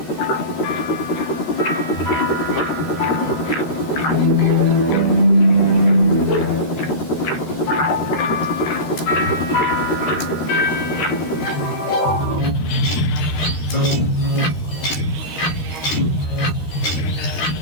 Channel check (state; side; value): late; right; 13 ms